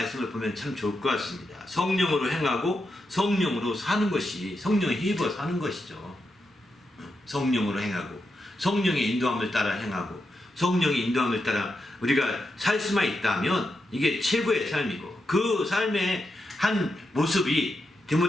보면 참 좋을 것 같습니다. 성령으로 행하고 성령으로 사는 것이 성령에 힘입어서 하는 것이죠. 성령으로 행하고 성령의 인도함을 따라 행하고 성령의 인도함을 따라 우리가 살 수만 있다면 이게 최고의 삶이고 그 삶의 한 모습이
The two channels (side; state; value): both; normal; correlation 0.86